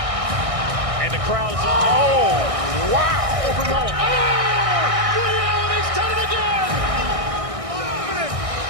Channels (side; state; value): left; late; 1.6 ms